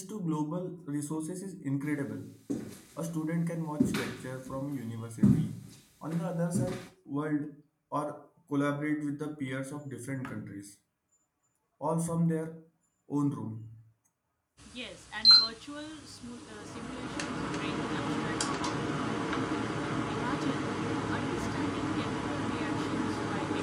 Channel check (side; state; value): both; identical; correlation 1.00